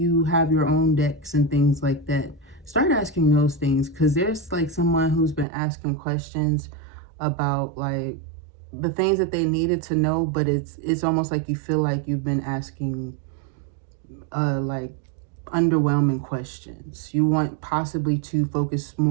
have your own decks and things like that. Start asking those things, because there's like someone who's been asking questions about like the things that they needed to know, but it's almost like you feel like you've been asking like underwhelming questions. You want possibly to focus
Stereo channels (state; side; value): drops out; left; at 5.5 s